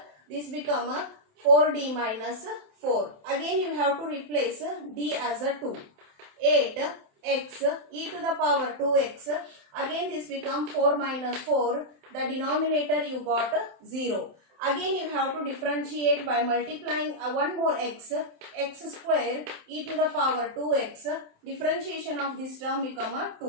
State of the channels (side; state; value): left; late; 27 ms